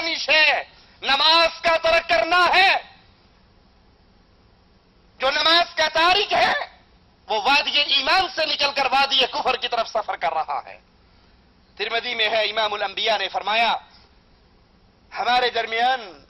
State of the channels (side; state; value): both; identical; correlation 1.00